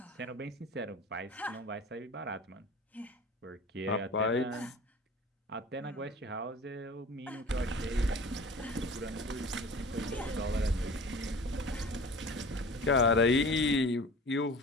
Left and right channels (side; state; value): both; normal; correlation 0.40